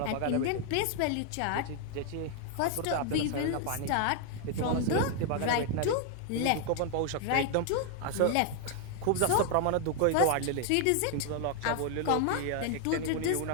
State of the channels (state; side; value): different; both; correlation 0.00